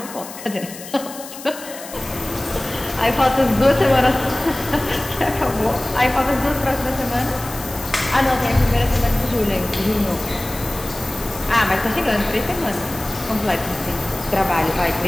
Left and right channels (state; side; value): noise; left; hiss, 14 dB below the sound